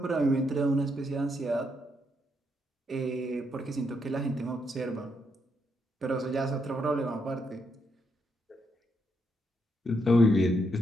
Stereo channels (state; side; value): normal; both; correlation 0.78